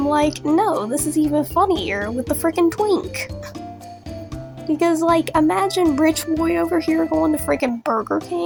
like, no, this is even funnier with the freaking twink. Because, imagine Rich Boy over here going to freaking Burger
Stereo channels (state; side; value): identical; both; correlation 1.00